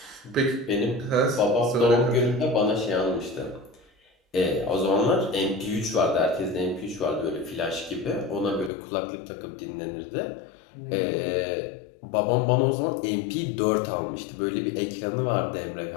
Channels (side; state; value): right; drops out; at 8.7 s